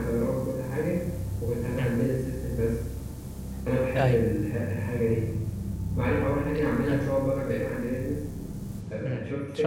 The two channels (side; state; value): both; identical; correlation 1.00